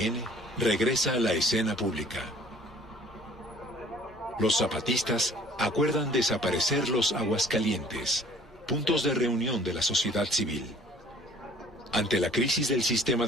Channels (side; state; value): both; normal; correlation 0.54